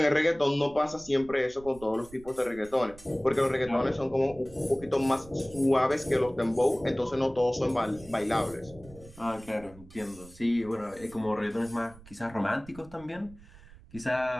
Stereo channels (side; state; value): right; noise; rumble, 21 dB below the sound